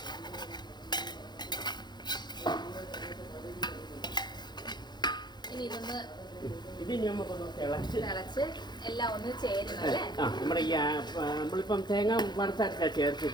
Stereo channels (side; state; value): right; late; 0.21 ms